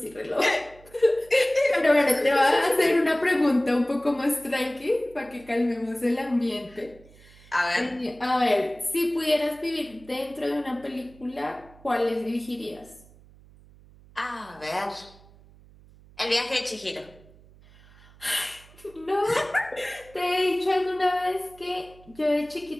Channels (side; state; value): right; noise; hum, 24 dB below the sound